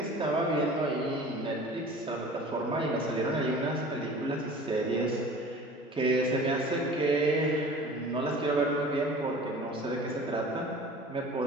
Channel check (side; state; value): both; normal; correlation 0.43